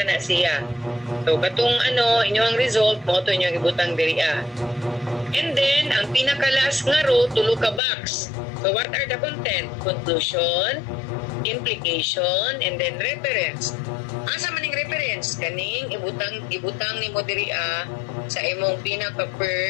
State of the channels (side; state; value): right; drops out; at 7.8 s